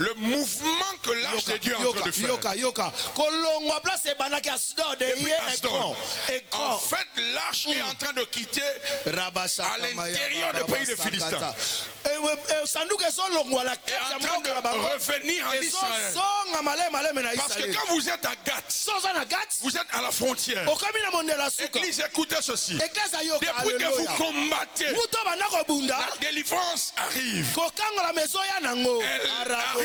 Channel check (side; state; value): both; identical; correlation 1.00